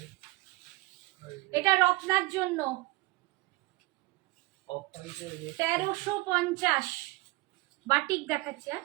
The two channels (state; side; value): quieter; left; 22.2 dB